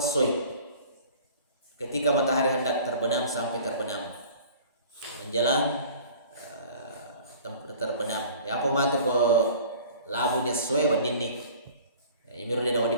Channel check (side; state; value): both; inverted; correlation -0.45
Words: Ketika matahari hendak terbenam sampai terbenam menjelang terbenam. Ya apa matu ko labu dia soy wadini. Ya imiru dia